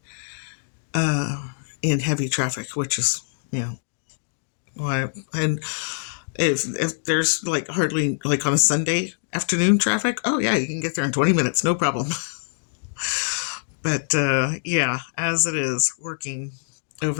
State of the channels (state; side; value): silent; right; digital silence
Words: in heavy traffic, which is, why. And if there's like hardly like on a Sunday afternoon traffic, oh yeah, you can get there in 20 minutes, no problem. But yeah, as it is working